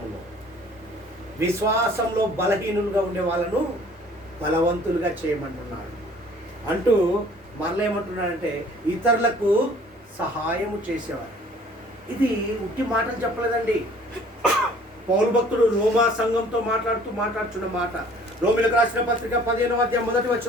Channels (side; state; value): both; normal; correlation 0.53